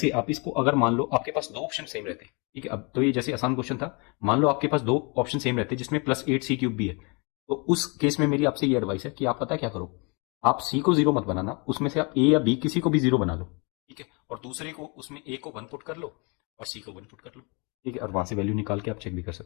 आप इसको अगर मान लो आपके पास दो ऑप्शन सेम रहते हैं, ठीक है, अब तो ये जैसे आसान क्वेश्चन था, मान लो आपके पास दो ऑप्शन सेम रहते हैं जिसमें +8c³ भी है, तो उस केस में मेरी आपसे ये एडवाइस है कि आप पता क्या करो, आप सी को जीरो मत बनाना, उसमें से आप ए या बी किसी को भी जीरो बना लो। ठीक है, और दूसरे को उसमें ए को 1 पुट कर लो और सी को 1 पुट कर लो। ठीक है, और वहां से वैल्यू निकाल के आप चेक भी कर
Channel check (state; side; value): quieter; right; 31.7 dB